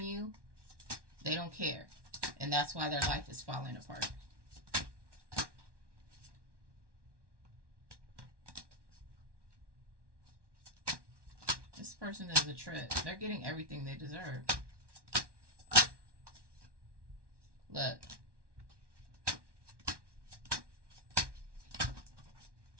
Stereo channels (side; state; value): left; late; 1.1 ms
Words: you, they don't care. And that's why their life is falling apart. This person is a trip. They're getting everything they deserve. Look.